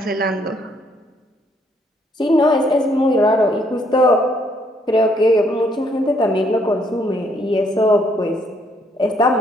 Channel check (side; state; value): both; normal; correlation 0.69